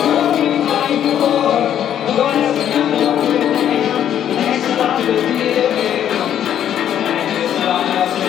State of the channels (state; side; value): quieter; right; 10.1 dB